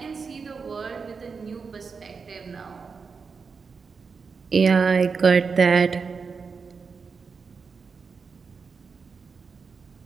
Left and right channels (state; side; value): quieter; left; 5.2 dB